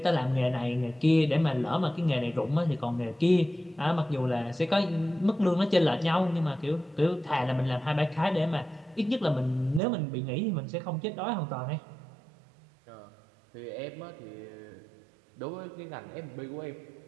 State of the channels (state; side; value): drops out; left; at 9.8 s